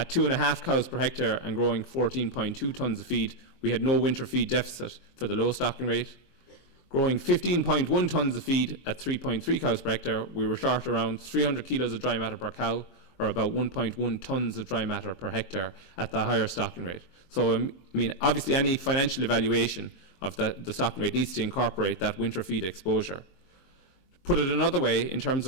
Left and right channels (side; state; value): right; late; 23 ms